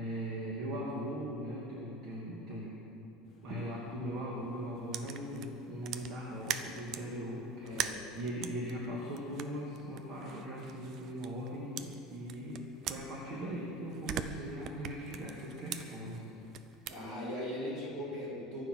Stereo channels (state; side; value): normal; both; correlation 0.35